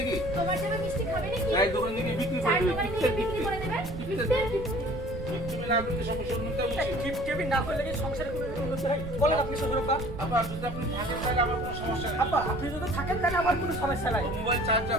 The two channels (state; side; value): noise; right; rumble, 9 dB below the sound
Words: তোমার জন্য মিষ্টি খাবে নাকি? চায়ের দোকান থেকে বিক্রি করে চায়ের দেবে। দোকানে গিয়ে বিক্রি করে দেবেন? তুমি না করলে সমস্যা উন্নতি হচ্ছে। গিফট টেবিল না করলে কি সংসারে কোনো উন্নতি হয়? বলেন আপনি শ্বশুরপা। আবার যদি আপনি থাকেন তাহলে আমার কোনো সমস্যা নেই। আপা, আপনি যদি থাকেন তাহলে আমার কোনো সমস্যা নাই। মোবাইল